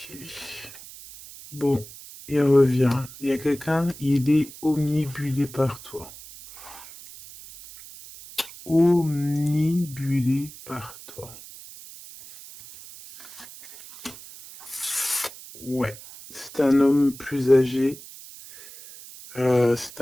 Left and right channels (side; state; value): right; noise; hiss, 17 dB below the sound